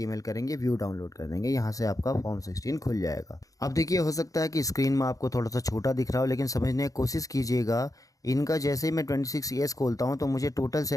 करेंगे, व्यू डाउनलोड कर देंगे। यहाँ से आपका फॉर्म 16 खुल जाएगा। अब देखिए, हो सकता है कि स्क्रीन में आपको थोड़ा सा छोटा दिख रहा हो, लेकिन समझने की कोशिश कीजिएगा। इनका जैसे ही मैं 26AS खोलता हूँ तो मुझे टोटल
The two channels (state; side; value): late; right; 0.17 ms